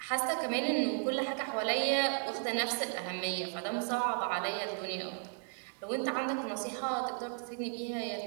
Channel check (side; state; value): left; silent; 55 dB below the other